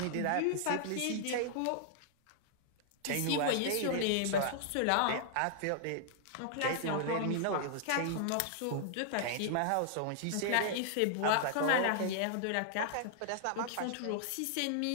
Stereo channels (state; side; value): different; both; correlation -0.01